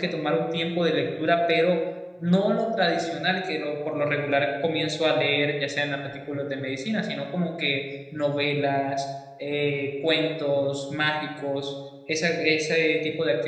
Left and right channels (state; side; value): identical; both; correlation 1.00